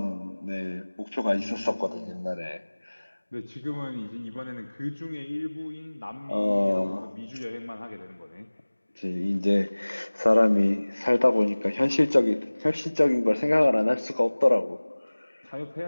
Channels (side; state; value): both; inverted; correlation -1.00